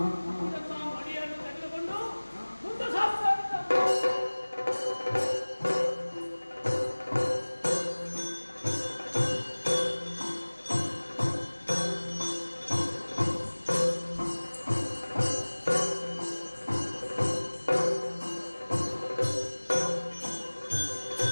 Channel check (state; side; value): inverted; both; correlation -1.00